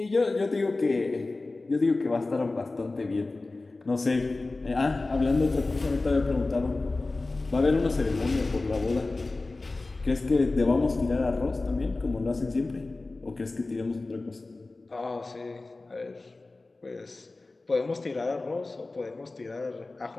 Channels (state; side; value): quieter; right; 3.3 dB